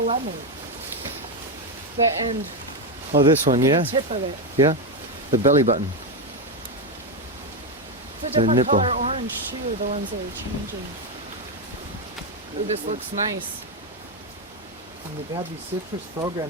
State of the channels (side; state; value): both; normal; correlation 0.07